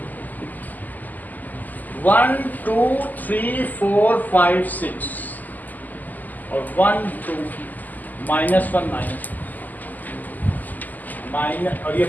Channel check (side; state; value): right; late; 0.083 ms